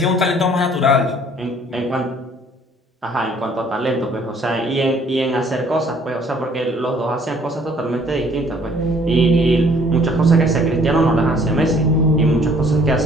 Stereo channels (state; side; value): normal; both; correlation 0.59